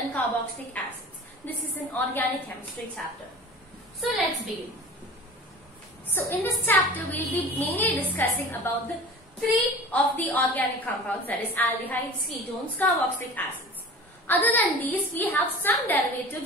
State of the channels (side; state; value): both; normal; correlation 0.39